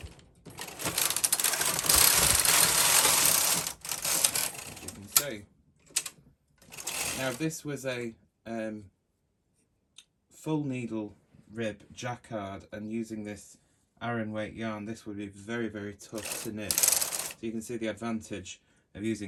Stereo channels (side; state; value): both; identical; correlation 1.00